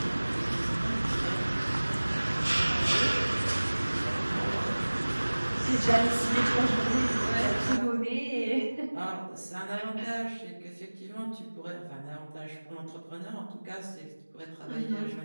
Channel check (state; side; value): inverted; both; correlation -1.00